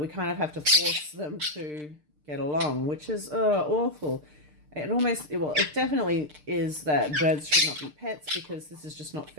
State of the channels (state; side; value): late; left; 6.7 ms